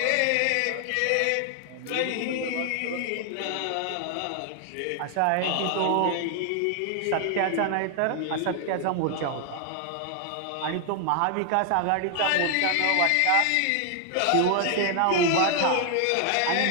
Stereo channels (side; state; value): both; different; correlation 0.00